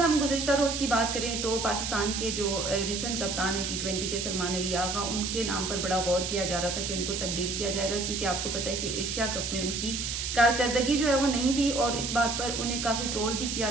गुज़िश्ता रोज़ की बात करें तो पाकिस्तान के जो रिसेंट कप्तान है T20 के, सलमान अली आगा, उनके नाम पर बड़ा गौर किया जा रहा था कि उनको तब्दील किया जाएगा, क्योंकि आपको पता है कि एशिया कप में उनकी कारकर्दगी जो है वो नहीं थी और इस बात पर उन्हें काफ़ी ट्रोल भी किया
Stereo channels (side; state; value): right; noise; hiss, 3 dB below the sound